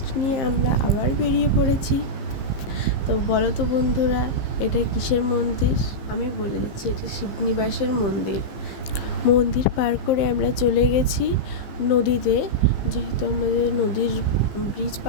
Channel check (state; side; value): late; right; 15 ms